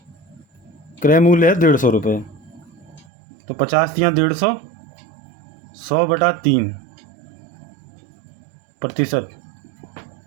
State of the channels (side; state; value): left; drops out; at 3.1 s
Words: क्रय मूल्य है 150 रुपये, तो 50 या 150, 100/3%,